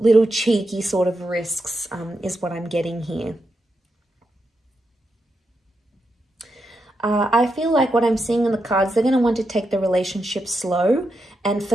cheeky sort of risks, is what I'm getting here. I feel like what I'm seeing in the cards, they're going to want to take the relationship slow. And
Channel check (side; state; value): both; normal; correlation 0.85